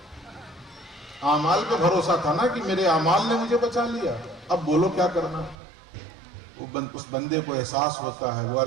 اعمال پہ بھروسہ تھا نا کہ میرے اعمال نے مجھے بچا لیا، اب بولو کیا کرنا۔ اس بندے کو احساس ہوتا ہے، وہ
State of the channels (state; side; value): drops out; left; at 5.6 s